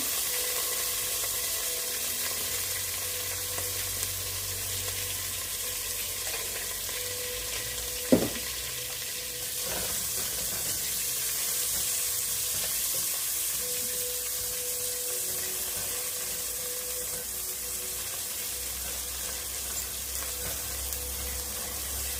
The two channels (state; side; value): identical; both; correlation 1.00